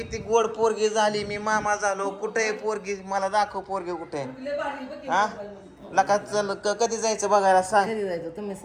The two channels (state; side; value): identical; both; correlation 1.00